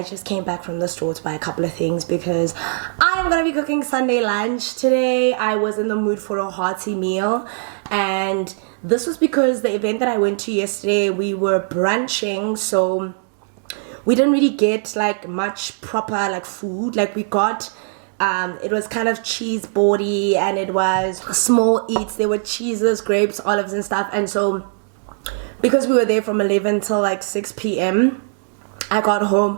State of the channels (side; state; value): left; silent; digital silence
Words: just came back from the store to buy a couple of things because I am going to be cooking Sunday lunch today. I was in the mood for a hearty meal, and this was because the event that I went to yesterday, we were brunching, so we didn't really get like much proper like food. Like we got it was kind of cheese boardy, and it was small eats. There were cheeses, grapes, olives and stuff. And so because we were there from 11 till like 6 p.m, I got